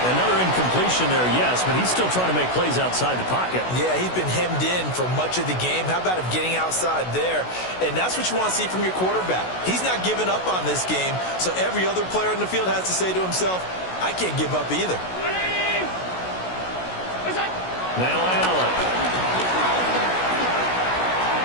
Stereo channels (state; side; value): late; right; 16 ms